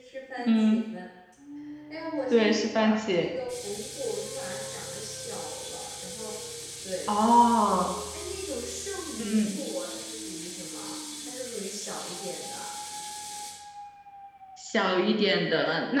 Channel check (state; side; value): identical; both; correlation 1.00